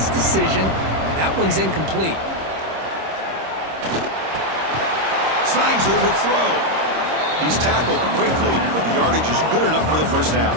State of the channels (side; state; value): left; late; 26 ms